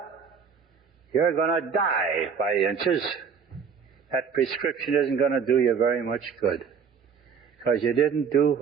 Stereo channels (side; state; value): left; quieter; 6.4 dB